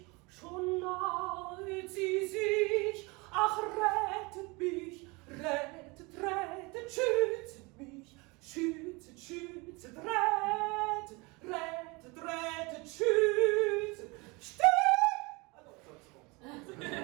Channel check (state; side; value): quieter; left; 26.4 dB